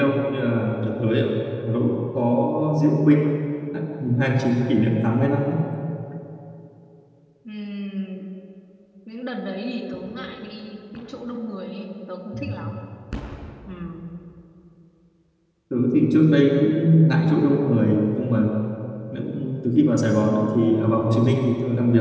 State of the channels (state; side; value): identical; both; correlation 1.00